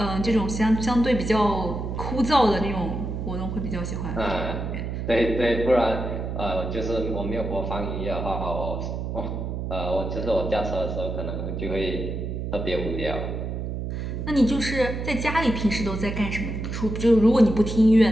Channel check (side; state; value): right; noise; hum, 4 dB below the sound